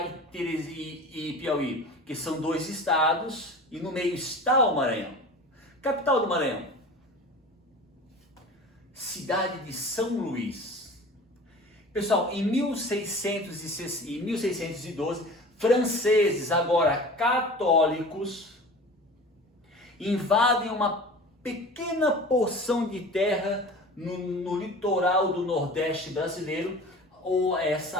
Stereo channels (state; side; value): normal; both; correlation 0.38